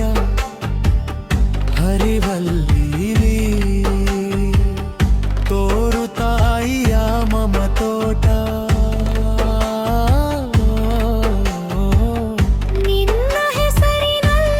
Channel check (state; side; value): identical; both; correlation 1.00